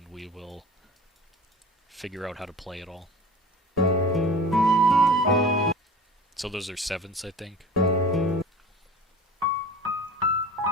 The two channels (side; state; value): both; normal; correlation 0.38